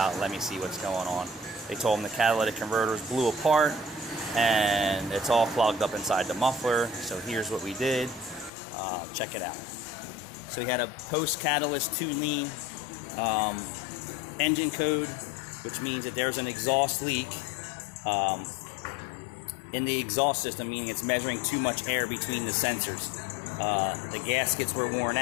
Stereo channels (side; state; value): right; drops out; at 8.5 s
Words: Let me see what's going on. They told him the catalytic converters blew apart and it's all clogged up inside the muffler. So here's what we did. Check it out. So we had a post-catalyst 2-lean engine code, which means that there's an exhaust leak in the exhaust system, meaning it's measuring too much air between the sensors. The gaskets were worn